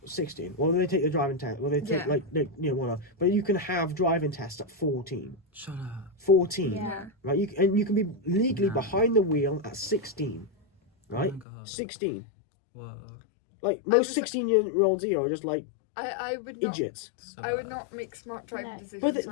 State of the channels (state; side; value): drops out; right; at 11.5 s